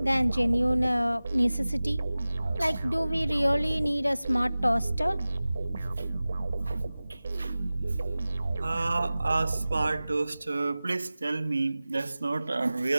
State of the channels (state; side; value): inverted; both; correlation -0.97